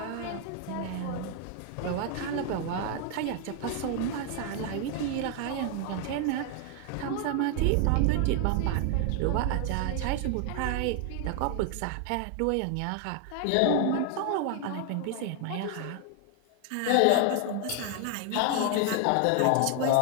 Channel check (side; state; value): both; different; correlation 0.00